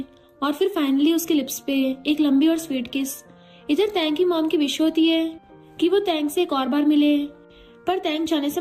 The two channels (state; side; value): identical; both; correlation 1.00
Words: और फिर फाइनली उसके लिप्स पे एक लंबी और स्वीट किस। इधर तैंग की मॉम की विश होती है कि वो तैंग से एक और बार मिले, पर तैंग जाने से